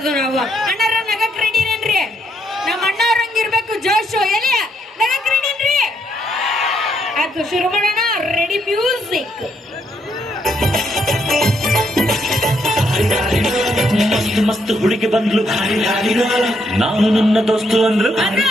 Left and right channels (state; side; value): normal; both; correlation 0.74